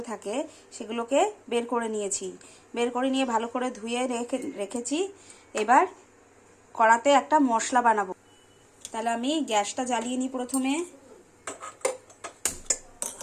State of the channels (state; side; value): identical; both; correlation 1.00